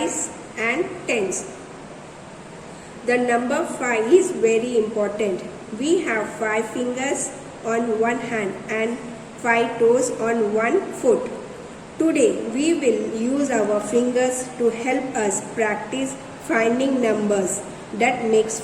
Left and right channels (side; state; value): both; identical; correlation 1.00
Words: and 10s. The number 5 is very important. We have 5 fingers on one hand and 5 toes on one foot. Today we will use our fingers to help us practice finding numbers that makes